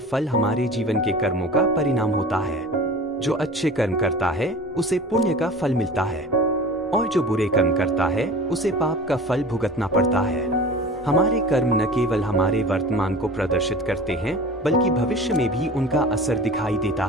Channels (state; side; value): normal; both; correlation 0.39